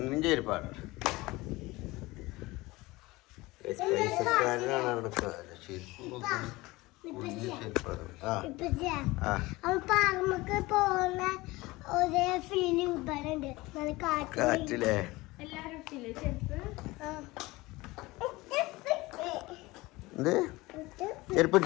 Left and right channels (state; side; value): quieter; right; 20.8 dB